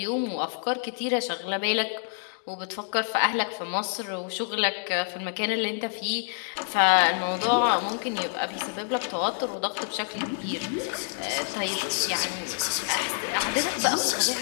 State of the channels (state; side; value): silent; right; 59 dB below the other